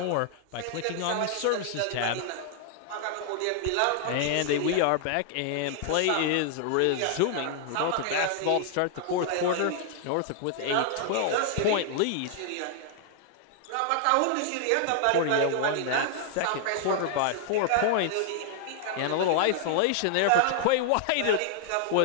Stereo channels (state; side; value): different; both; correlation 0.00